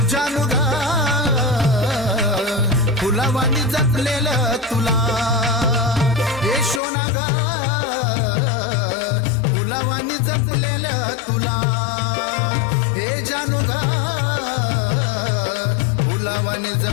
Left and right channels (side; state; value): right; drops out; at 6.8 s